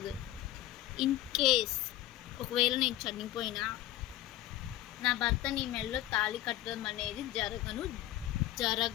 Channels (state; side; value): quieter; right; 14.3 dB